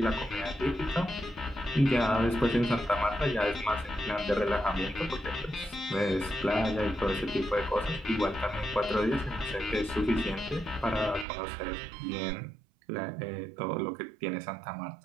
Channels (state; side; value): drops out; left; at 11.2 s